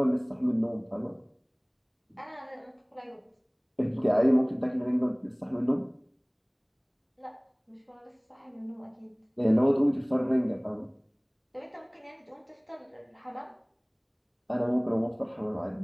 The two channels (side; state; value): both; identical; correlation 1.00